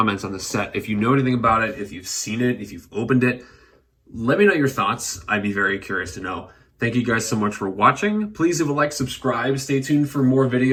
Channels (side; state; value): both; identical; correlation 1.00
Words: on the set, if you know anything about it, if you've seen it, if you've opened it, let me know your thoughts. I'd be very curious to know. Thank you guys so much for watching. Please leave a like, subscribe, stay tuned for more